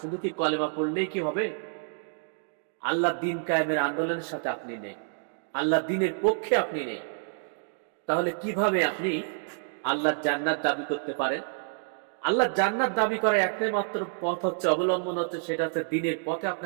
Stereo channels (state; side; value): silent; left; digital silence